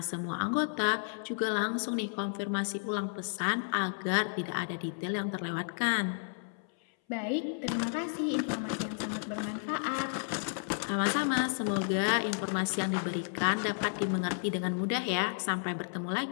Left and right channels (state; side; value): silent; right; 56 dB below the other